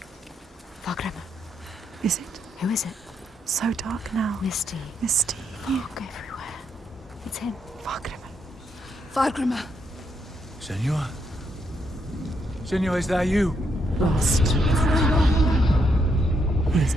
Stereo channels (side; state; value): both; normal; correlation 0.77